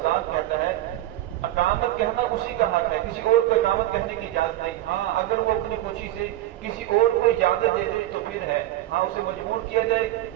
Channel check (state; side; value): quieter; left; 14.7 dB